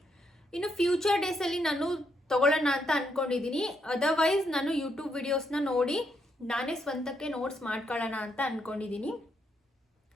ಇನ್ನು ಫ್ಯೂಚರ್ ಡೇಸಲ್ಲಿ ನಾನು ತಗೊಳ್ಳೋಣ ಅಂತ ಅಂದ್ಕೊಂಡಿದ್ದೀನಿ. ಅದರ್ವೈಸ್ ನಾನು ಯೂಟ್ಯೂಬ್ ವಿಡಿಯೋಸ್ನ ನೋಡಿ ನಾನೇ ಸ್ವಂತಕ್ಕೆ ನೋಟ್ಸ್ ಮಾಡ್ಕೊಳ್ಳೋಣ ಅಂತ ಅಂದ್ಕೊಂಡಿದ್ದೀನಿ.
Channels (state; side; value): normal; both; correlation 0.77